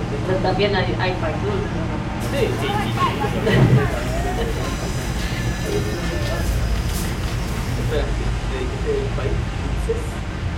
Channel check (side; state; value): both; identical; correlation 1.00